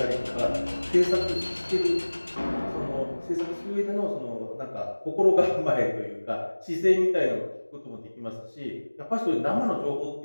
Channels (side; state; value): both; inverted; correlation -1.00